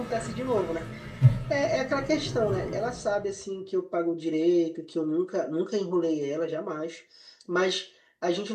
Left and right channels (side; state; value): both; identical; correlation 1.00